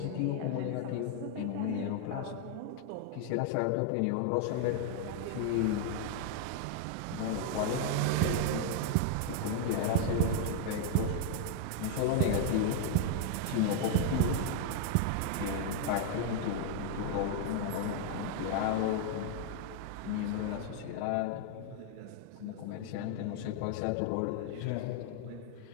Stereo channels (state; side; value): different; both; correlation 0.00